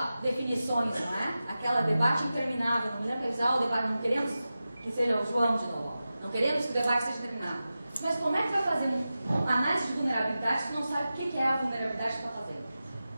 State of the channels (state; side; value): inverted; both; correlation -0.93